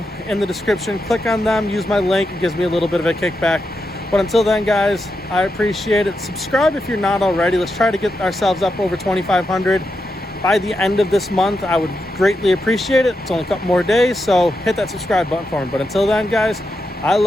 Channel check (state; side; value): normal; both; correlation 0.86